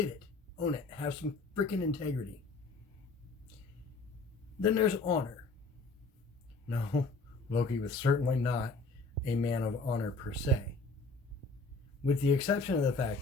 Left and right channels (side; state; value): right; quieter; 3.6 dB